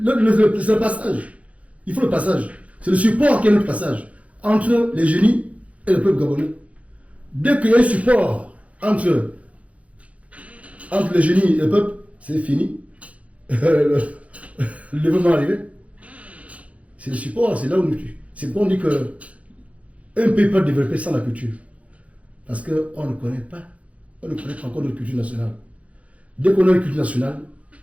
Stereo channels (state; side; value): late; left; 0.065 ms